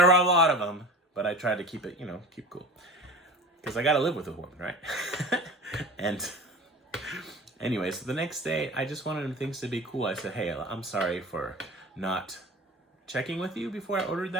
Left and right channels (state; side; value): normal; both; correlation 0.36